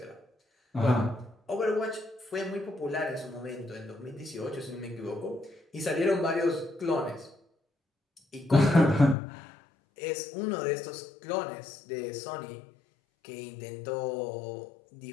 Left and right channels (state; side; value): drops out; right; at 9.2 s